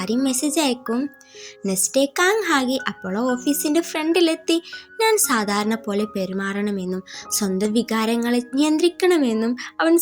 മെസ്സേജ് അയക്കും. നെക്സ്റ്റ് ഡേ ഹാഗി അപ്പോളോ ഓഫീസിൻ്റെ ഫ്രണ്ടിലെത്തി ഞാൻ സാധാരണ പോലെ പെരുമാറണമെന്നും സ്വന്തം വികാരങ്ങളെ നിയന്ത്രിക്കണമെന്നും അവൻ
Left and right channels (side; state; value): both; identical; correlation 1.00